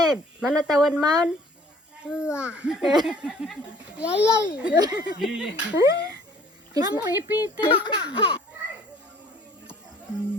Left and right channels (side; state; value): both; normal; correlation 0.55